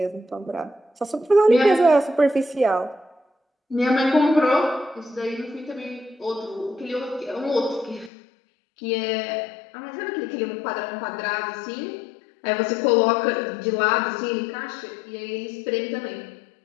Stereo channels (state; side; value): drops out; right; at 8.1 s